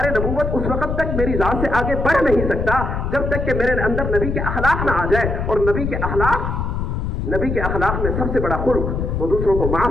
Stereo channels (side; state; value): left; noise; rumble, 2 dB below the sound